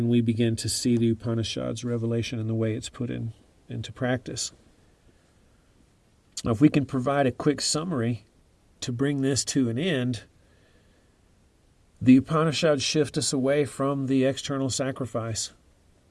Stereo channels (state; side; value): identical; both; correlation 1.00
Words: we begin to see the Upanishads' revelation and the way it's put into practice. Now, if we can provide a quick summary to bring this to an end, the Upanishads shift us away from the external sacrifice.